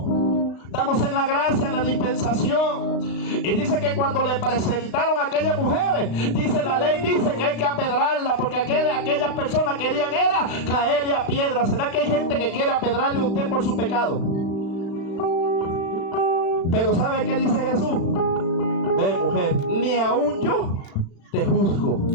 Estamos en la gracia, en la dispensación. Y dice que cuando le presentaron a aquellas mujeres, dice la ley, dice que hay que apedrarla, porque aquellas personas querían era caerle a piedra. ¿Será que hay gente que quiere apedrarle a usted por su pecado? Pero ¿sabe qué dice Jesús? Ve, mujer, ni aún yo te juzgo.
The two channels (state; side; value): late; right; 35 ms